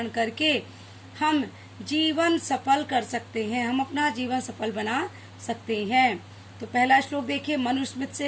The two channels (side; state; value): both; identical; correlation 1.00